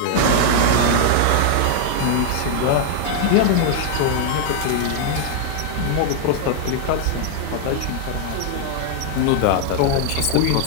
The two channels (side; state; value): both; different; correlation 0.00